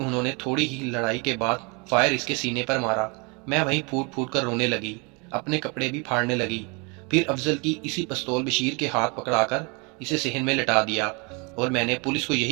نے تھوڑی ہی لڑائی کے بعد فائر اس کے سینے پر مارا۔ میں وہیں پھوٹ پھوٹ کر رونے لگی، اپنے کپڑے بھی پھاڑنے لگی۔ پھر افضل کی اسی پستول بشیر کے ہاتھ پکڑا کر اسے صحن میں لٹا دیا، اور میں نے پولیس کو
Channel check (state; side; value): quieter; left; 30.9 dB